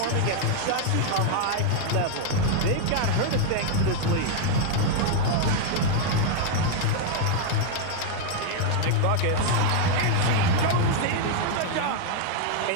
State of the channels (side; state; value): both; different; correlation 0.00